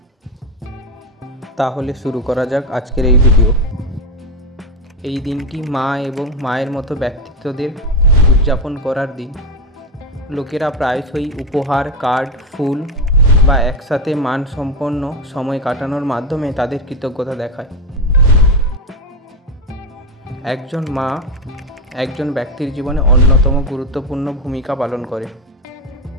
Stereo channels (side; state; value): both; normal; correlation 0.14